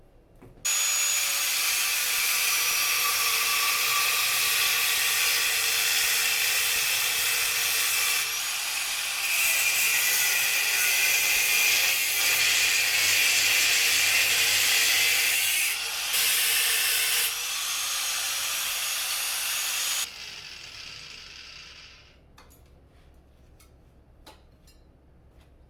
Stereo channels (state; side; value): identical; both; correlation 1.00